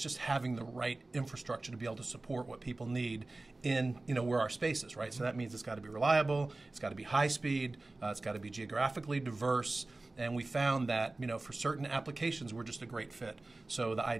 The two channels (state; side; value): quieter; left; 3.1 dB